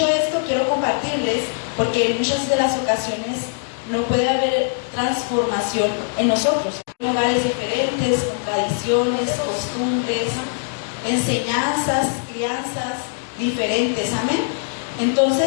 esto, quiero compartirles, porque en muchas de las ocasiones no puede haber transformación en nosotros. lugares diferentes, con tradiciones, costumbres, enseñanzas, crianzas diferentes, amén.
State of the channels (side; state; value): right; silent; digital silence